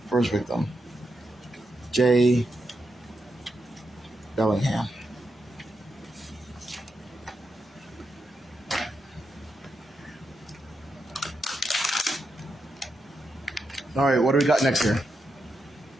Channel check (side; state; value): both; normal; correlation 0.85